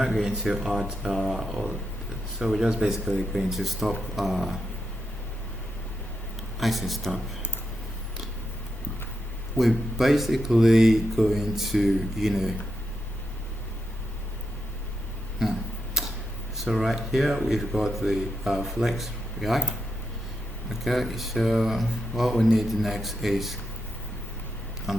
going to add so we're just basically going to stop I say stop. we're basically going to, so right here we've got the flex React. Okay, so what we need next is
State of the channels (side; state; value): both; normal; correlation 0.85